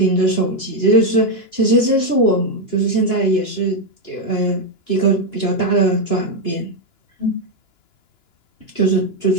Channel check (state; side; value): late; right; 2.9 ms